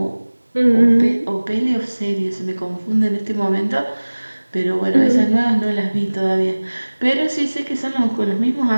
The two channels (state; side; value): inverted; both; correlation -1.00